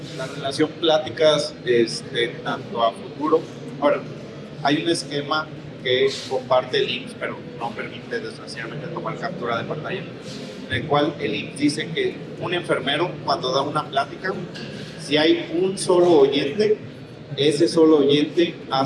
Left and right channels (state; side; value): identical; both; correlation 1.00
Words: La relación pláticas tanto a futuro. Ahora, hay un esquema que comparte el IMSS, pero no permite desgraciadamente tomar captura de pantalla, en el cual el IMSS dice que un enfermero, cuando da una plática, si hay un solo oyente, ese solo oyente